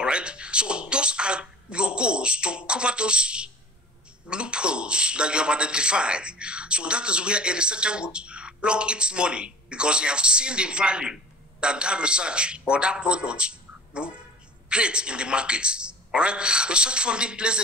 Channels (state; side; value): normal; both; correlation 0.41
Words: right, so those are your goals to cover those loopholes that you have identified. So that is where a researcher would plug its money, because you have seen the value that research or that product will create in the market. All right, research funding plays